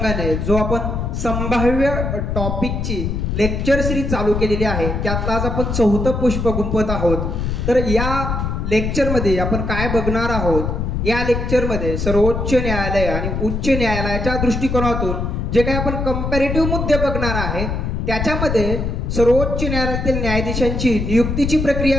जो आपण संभाव्य टॉपिकची लेक्चर सिरीज चालू केलेली आहे त्यातला आज आपण चौथं पुष्प गुंफत आहोत. तर या लेक्चरमध्ये आपण काय बघणार आहोत, या लेक्चरमध्ये सर्वोच्च न्यायालय आणि उच्च न्यायालयाच्या दृष्टिकोनातून जे काही आपण कंपॅरेटिव्ह मुद्दे बघणार आहे त्याच्यामध्ये सर्वोच्च न्यायालयातील न्यायाधीशांची नियुक्तीची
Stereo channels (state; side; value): noise; left; rumble, 2 dB below the sound